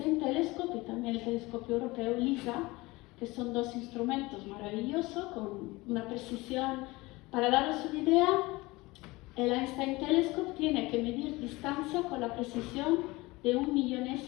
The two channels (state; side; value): quieter; right; 21.8 dB